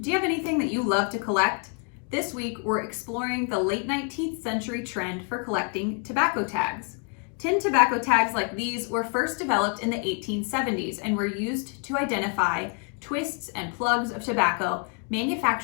do you have anything that you love to collect? This week, we're exploring the late 19th century trend for collecting tobacco tags. Tin tobacco tags like these were first developed in the 1870s and were used to identify twists and plugs of tobacco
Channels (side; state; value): right; quieter; 39.7 dB